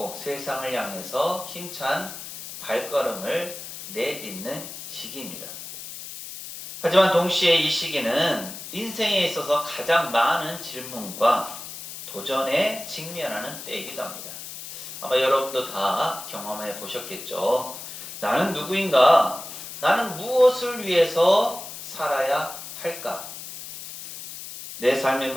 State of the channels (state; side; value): noise; left; hiss, 11 dB below the sound